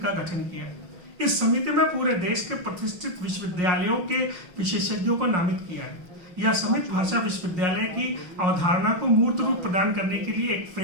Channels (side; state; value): left; late; 5.6 ms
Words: गठन किया। इस समिति में पूरे देश के प्रतिष्ठित विश्वविद्यालयों के विशेषज्ञों को नामित किया है। यह समिति भाषा विश्वविद्यालय की अवधारणा को मूर्त रूप प्रदान करने के लिए एक